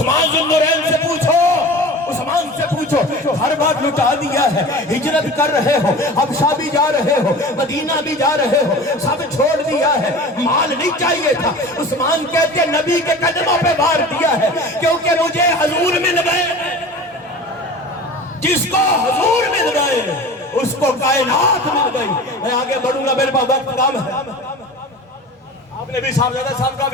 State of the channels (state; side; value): normal; both; correlation 0.37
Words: ذوالنورین سے پوچھو، عثمان سے پوچھو، ہر بات لٹا دیا ہے، ہجرت کر رہے ہو، حبشہ بھی جا رہے ہو، مدینہ بھی جا رہے ہو، سب چھوڑ دیا ہے، مال نہیں چاہیے تھا۔ عثمان کہتے ہیں نبی کے قدموں پہ بار دیا ہے کیونکہ مجھے حضور مل گئے۔ جس کو حضور مل گئے اس کو کائنات مل گئی۔ میں آگے بڑھوں گا، میرے پاس وقت کم ہے۔ آپ نے بھی صاحبزادہ صاحب کا